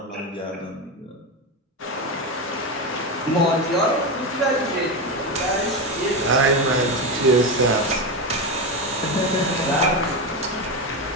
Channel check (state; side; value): normal; both; correlation 0.15